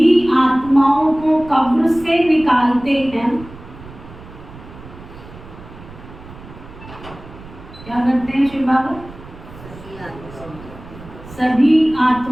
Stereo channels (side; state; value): right; noise; rumble, 17 dB below the sound